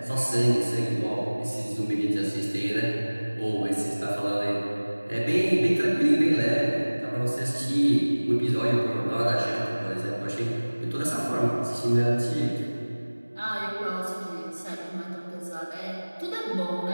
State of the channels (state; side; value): inverted; both; correlation -1.00